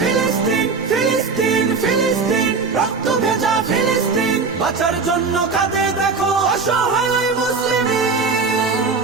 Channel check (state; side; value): quieter; left; 4.7 dB